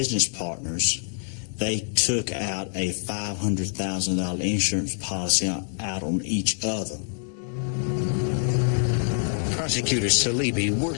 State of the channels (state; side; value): silent; right; 58 dB below the other